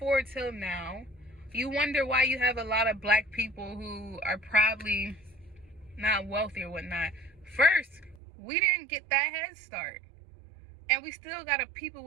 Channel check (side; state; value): left; drops out; at 8.2 s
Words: till now, you wonder why you have a lot of black people who are probably not wealthy or whatnot. First, we didn't get that head start. And we still got a people